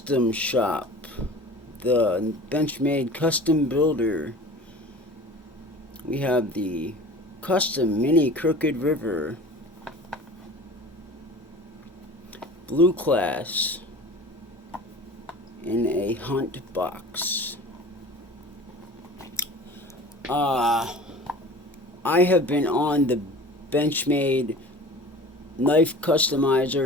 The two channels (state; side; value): normal; both; correlation 0.40